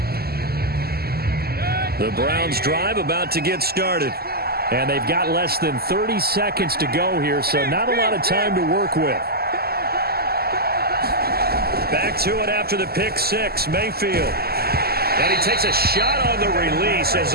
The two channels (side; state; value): left; late; 0.45 ms